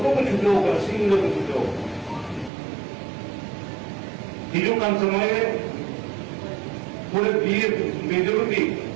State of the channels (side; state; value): left; drops out; at 2.5 s